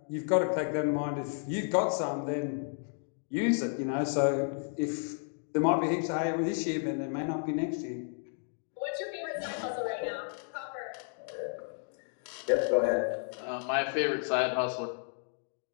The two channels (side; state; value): right; silent; 56 dB below the other